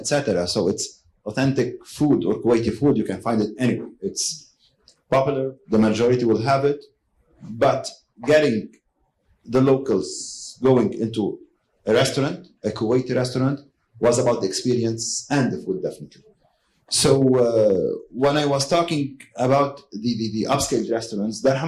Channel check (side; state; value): both; identical; correlation 1.00